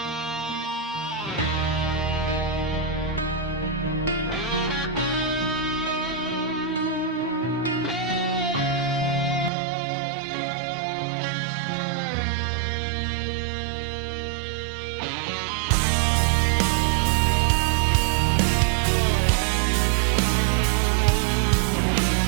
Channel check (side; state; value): left; drops out; at 9.5 s